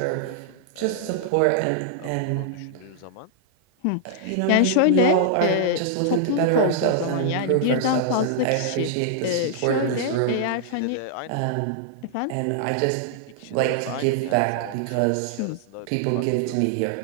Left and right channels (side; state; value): both; different; correlation -0.01